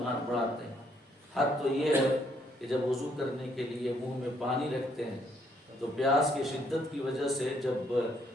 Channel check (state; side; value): normal; both; correlation 0.70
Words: ہاتھ بڑھاتے ہیں۔ حد تو یہ ہے کہ جب وضو کرنے کے لیے منہ میں پانی رکھتے ہیں تو پیاس کی شدت کی وجہ سے جب